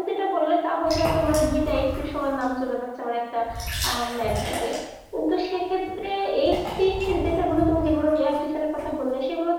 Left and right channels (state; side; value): identical; both; correlation 1.00